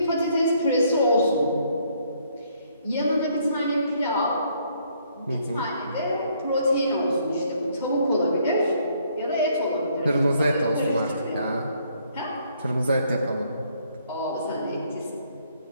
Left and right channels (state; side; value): inverted; both; correlation -0.67